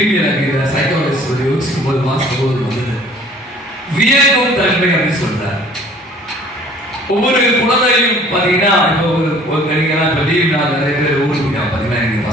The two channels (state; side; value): normal; both; correlation 0.53